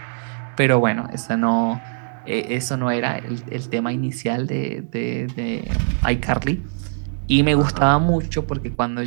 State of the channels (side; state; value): left; silent; digital silence